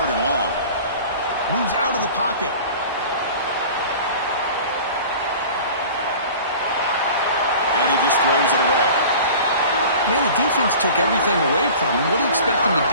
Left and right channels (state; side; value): inverted; both; correlation -0.41